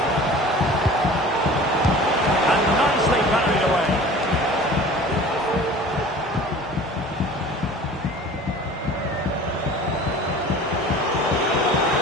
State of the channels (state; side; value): normal; both; correlation 0.42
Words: And nicely parried away.